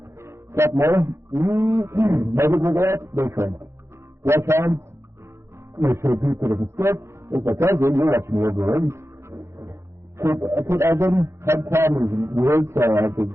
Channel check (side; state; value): left; late; 0.13 ms